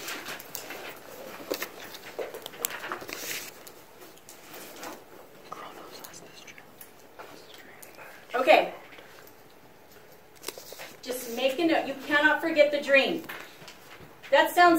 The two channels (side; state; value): both; identical; correlation 1.00